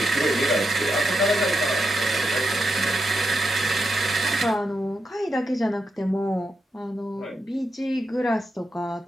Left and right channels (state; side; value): normal; both; correlation 0.85